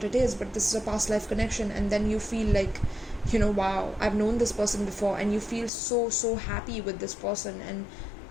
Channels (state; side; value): drops out; right; at 5.7 s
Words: it is, but this is a past life connection, and then you feel like, wow, I've known this person before, and you feel so happy with this person, and